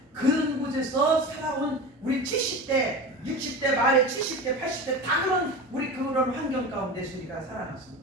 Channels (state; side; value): normal; both; correlation 0.29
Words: 그런 곳에서 살아온 우리 70대, 60대, 말에 70대, 80대 다 그런 환경 가운데서 우리가 살아났습니다.